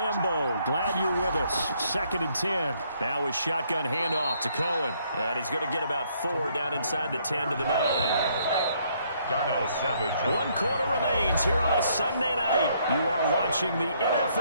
Glad you're with us. 2nd and 10. Now with shotgun handoff to Cohen. And he's going to get about 4 down inside the 10 to the 9. Darnell Savage. 1 quarter remains here on a Sunday night. You are watching the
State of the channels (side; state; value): both; inverted; correlation -0.68